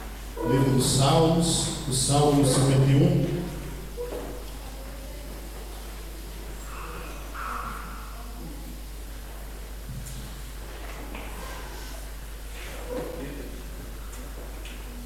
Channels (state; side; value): identical; both; correlation 1.00